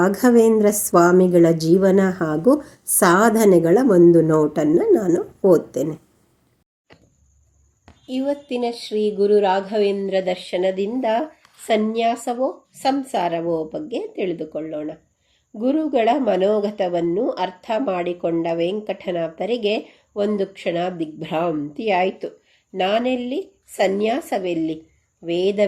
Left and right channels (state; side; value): identical; both; correlation 1.00